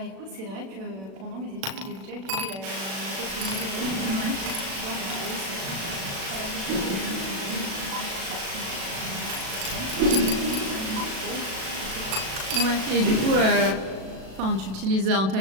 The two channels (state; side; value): late; left; 37 ms